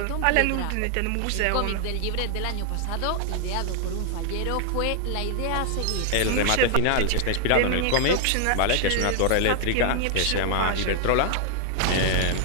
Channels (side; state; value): both; different; correlation 0.00